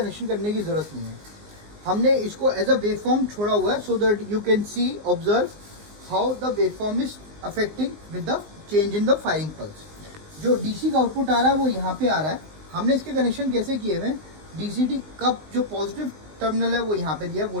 करने की ज़रूरत नहीं है। हमने इसको एज अ वेवफॉर्म छोड़ा हुआ है, so that you can see observe how the waveform is affecting with the change in the firing pulse. जो डीसी का आउटपुट आ रहा है वो यहाँ पे आ रहा है। हमने इसके कनेक्शन कैसे किए हुए हैं, डीसीटी का जो पॉजिटिव टर्मिनल है वो यहाँ पे दिया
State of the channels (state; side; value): late; left; 19 ms